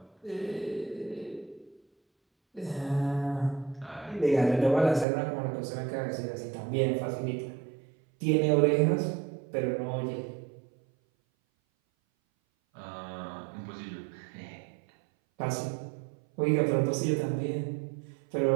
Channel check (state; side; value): drops out; left; at 5.1 s